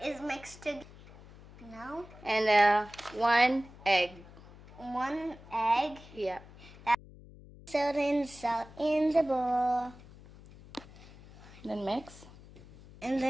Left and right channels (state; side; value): noise; left; hum, 20 dB below the sound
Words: is mixed together. No. And 1 egg. 1 egg. Yeah. Salt in the bowl. Then mix. And